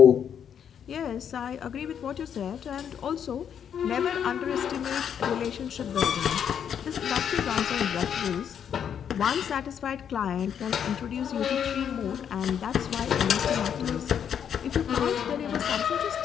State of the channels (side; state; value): right; quieter; 8.4 dB